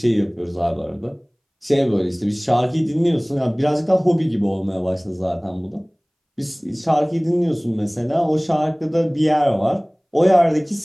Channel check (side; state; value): both; identical; correlation 1.00